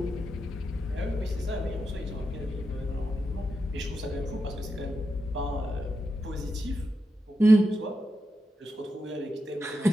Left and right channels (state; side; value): normal; both; correlation 0.87